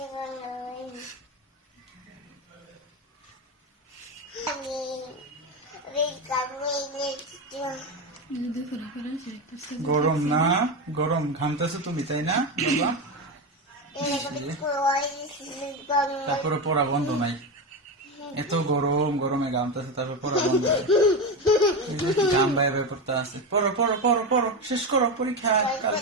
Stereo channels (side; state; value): both; normal; correlation 0.16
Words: গরম না? গরম, ঘামতেছো তুমি, তাই না বাবা? তারপরে পড়া বন্ধ নাই। এত গরম, গরমে ঘামতেছে, তারপর পড়া বন্ধ নাই। গাম বাইরে বাইরে পড়তে আছে। পড়ো পড়ো পড়ো পড়ো, শেষ করো পরীক্ষা